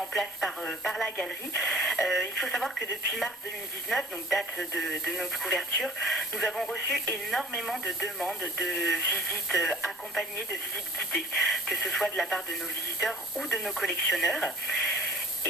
place par la galerie. Il faut savoir que depuis mars 2019, donc date de notre couverture, nous avons reçu énormément de demandes de visites accompagnées, de visites guidées, que ce soit de la part de nos visiteurs ou de nos collectionneurs.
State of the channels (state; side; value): normal; both; correlation 0.49